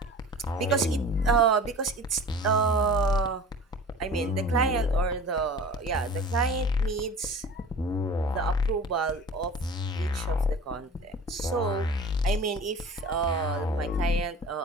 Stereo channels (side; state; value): both; normal; correlation 0.40